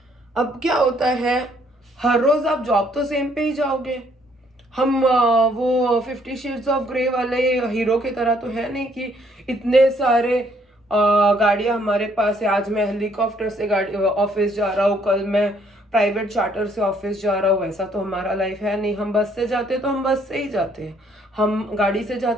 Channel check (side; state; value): both; normal; correlation 0.66